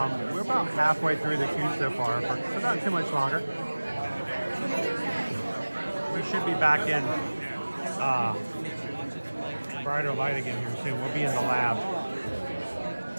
We're about halfway through the queue so far, so not too much longer. We should be back in brighter light again here soon. We'll be in the lab.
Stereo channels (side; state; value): both; inverted; correlation -1.00